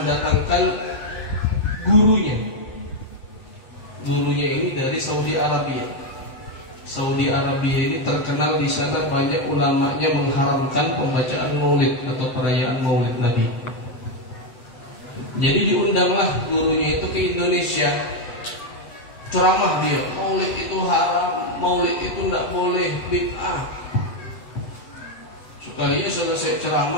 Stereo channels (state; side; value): late; right; 8.5 ms